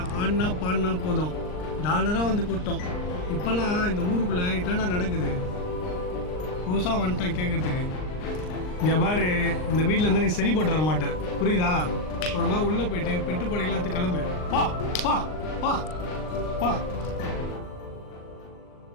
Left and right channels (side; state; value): right; late; 39 ms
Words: ஆடினா பாடினா போதும் டாலராக வந்து கூட்டம். இப்போல்லாம் இந்த ஊருக்குள்ளே இதெல்லாம் நடக்குது. புதுசாக வந்துட்டேன் கேட்குறதுக்கு. இங்கே பாரு, இந்த வீட்டில் இருந்தால் நீ சரிப்பட்டு வர மாட்டேன், புரியுதா? ஒழுங்கா உள்ளே போயிட்டு பெட்டுப்படை எல்லாத்துக்கும் கிளம்பு. பா பா பா பா.